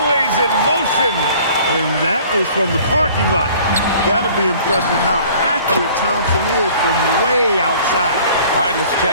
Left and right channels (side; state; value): both; inverted; correlation -0.51